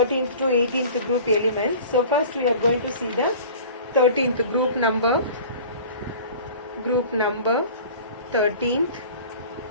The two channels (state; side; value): inverted; both; correlation -0.42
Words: to 18th group elements? So first we are going to see the 13th group number 13th,